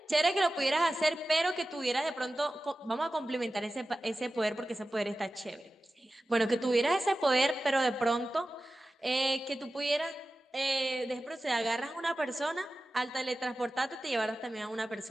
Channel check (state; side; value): normal; both; correlation 0.95